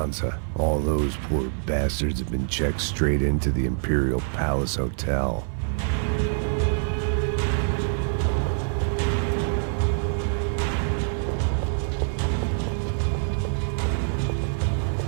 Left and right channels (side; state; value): left; silent; 57 dB below the other